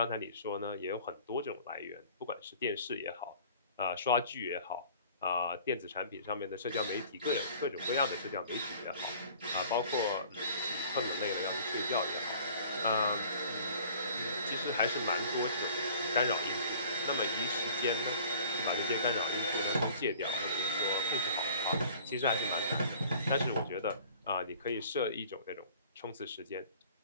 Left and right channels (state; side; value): inverted; both; correlation -0.49